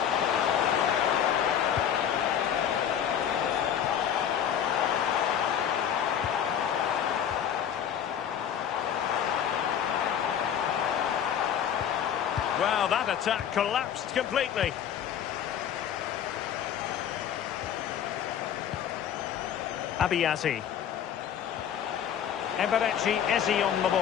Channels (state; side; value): quieter; right; 9.1 dB